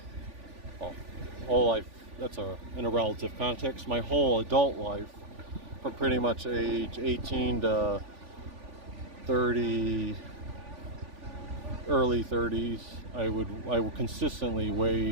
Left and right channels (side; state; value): left; late; 3.5 ms